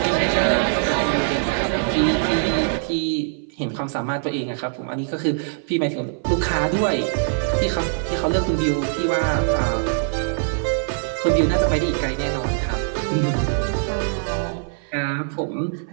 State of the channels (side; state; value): left; silent; 56 dB below the other